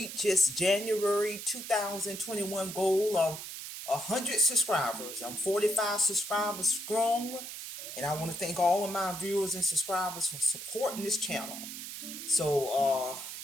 its January 2021 goal of 100 subscribers. I'm 45 subscribers strong, and I want to thank all of my viewers and subscribers for supporting this channel. So,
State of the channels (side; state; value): right; noise; hiss, 9 dB below the sound